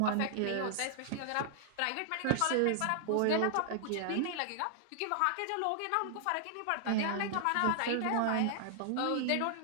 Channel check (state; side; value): different; both; correlation -0.01